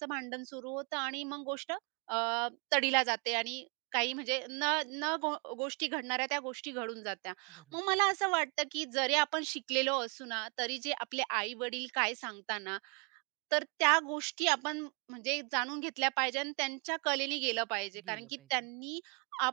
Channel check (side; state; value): left; quieter; 35.3 dB